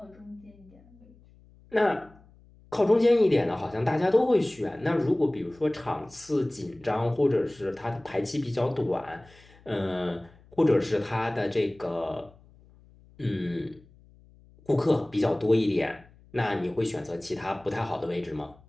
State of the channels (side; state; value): left; noise; hum, 26 dB below the sound